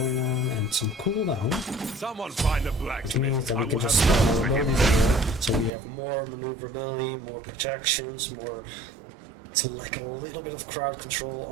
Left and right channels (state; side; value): drops out; left; at 5.7 s